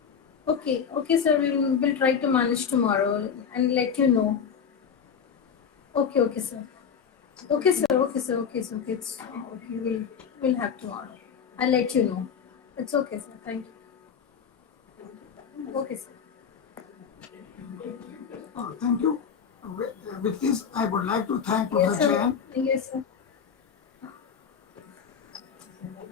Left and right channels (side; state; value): right; quieter; 7.0 dB